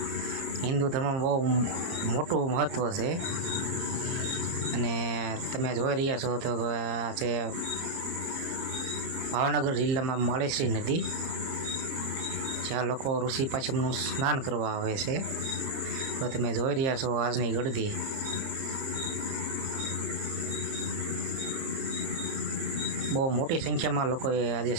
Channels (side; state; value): left; late; 30 ms